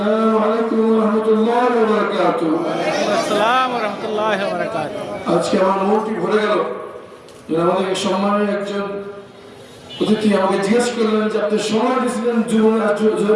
আলাইকুম ওয়া রাহমাতুল্লাহি ওয়া বারাকাতুহু। আসসালামু ওয়া রাহমাতুল্লাহি ওয়া বারাকাতুহু। আজকে আমার মনটি ভরে গেল। আমাদের সম্মানের একজন অতিথি আমাকে জিজ্ঞেস করলেন যে আপনি সময় দিয়েছিলেন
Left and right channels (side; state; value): both; identical; correlation 1.00